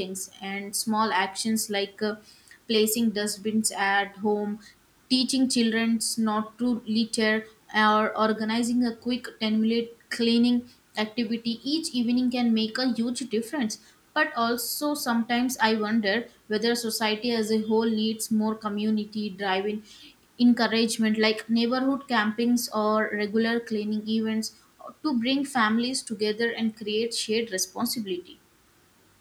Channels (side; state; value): both; identical; correlation 1.00